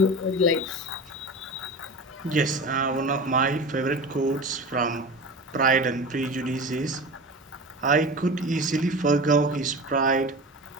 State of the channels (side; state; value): both; normal; correlation 0.31